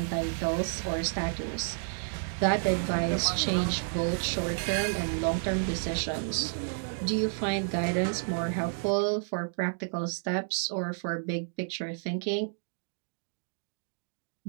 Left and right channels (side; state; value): left; silent; digital silence